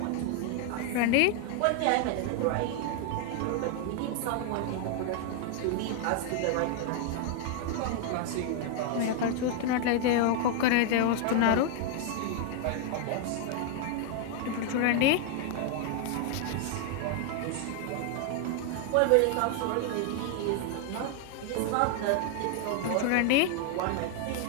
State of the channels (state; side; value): different; both; correlation 0.00